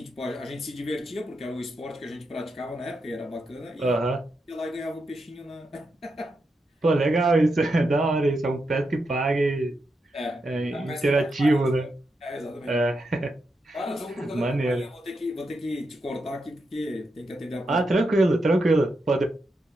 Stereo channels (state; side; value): normal; both; correlation 0.85